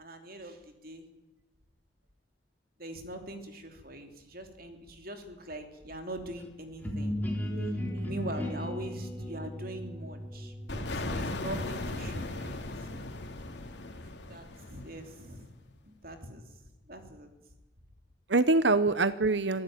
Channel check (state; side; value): normal; both; correlation 0.25